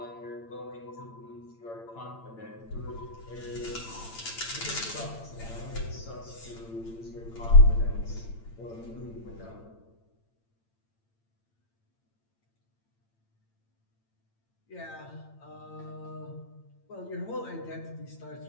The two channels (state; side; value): late; right; 8.9 ms